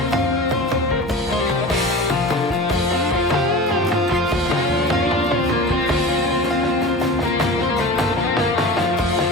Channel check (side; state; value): both; normal; correlation 0.34